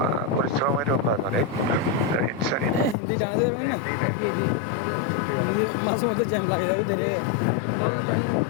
পরিশ্রমেরও কাজ, অনেক ইনসেন্টিভটা এমনিই দেয় না, তো করতে অনেক পরিশ্রম লাগে, সময়ও লাগে।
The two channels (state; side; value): drops out; right; at 3.0 s